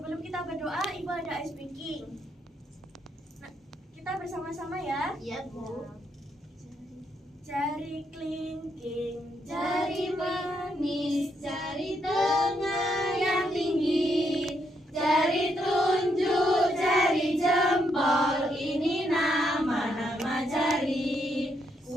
kita berdoa, Ibu ada ice breaking. Nah, kita bersama-sama ya. Iya, Bu. Jari kelingking, Jari manis, jari tengah yang tinggi, jari telunjuk, jari jempol, ini nama-nama jari.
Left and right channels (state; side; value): normal; both; correlation 0.77